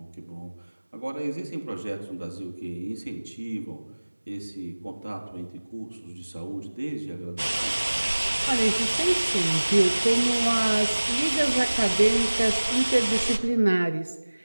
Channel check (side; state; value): both; inverted; correlation -1.00